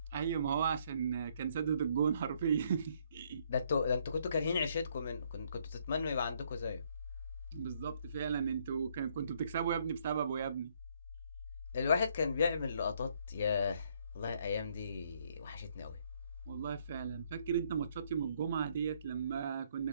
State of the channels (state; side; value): inverted; both; correlation -0.68